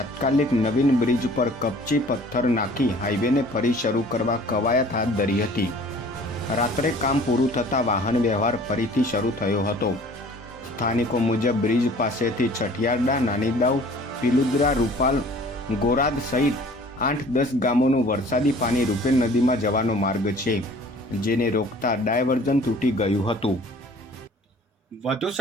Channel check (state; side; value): normal; both; correlation 0.50